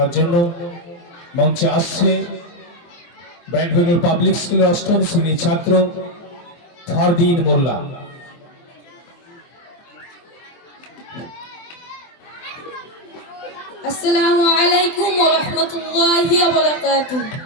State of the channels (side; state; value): right; late; 23 ms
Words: জন্য। মঞ্চে আসছে ব্রাইটভেল পাবলিক স্কুলের অষ্টম শ্রেণীর ছাত্র ফারদিন মোল্লা। আসসালামু আলাইকুম ওয়া রাহমাতুল্লাহি ওয়া বারাকাতুহু।